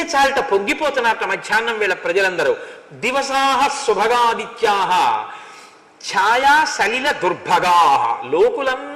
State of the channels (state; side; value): identical; both; correlation 1.00